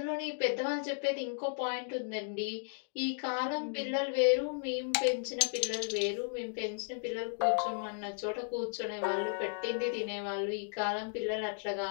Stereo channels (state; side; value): silent; right; 55 dB below the other